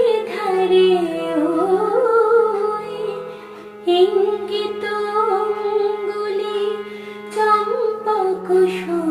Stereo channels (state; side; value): identical; both; correlation 1.00